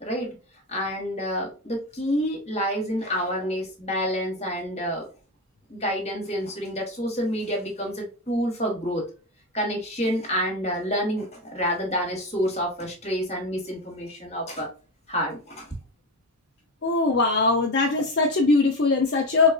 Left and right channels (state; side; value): normal; both; correlation 0.19